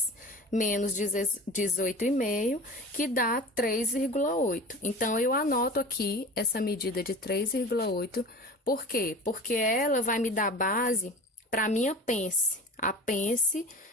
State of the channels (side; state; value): both; normal; correlation 0.36